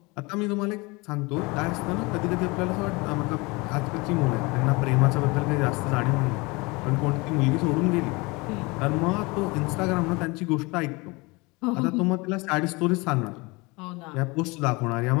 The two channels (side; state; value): right; quieter; 25.5 dB